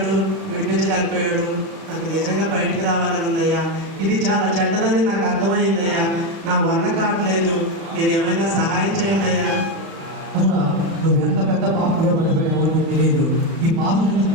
విడిపించలేకపోయాడు. నాకు నిజంగా బయటకు రావాలని ఉందయ్యా. ఇది చాలా చెడ్డదని నాకు అర్థమైందయ్యా. నా వల్ల కావట్లేదు, మీరు ఏమైనా సహాయం చేయండి అయ్యా. తమ్ముడా, నువ్వు ఎంత పెద్ద పాపంలో పడిపోయావో నీకు తెలియదు. ఈ పాపం నుంచి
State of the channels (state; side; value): late; left; 35 ms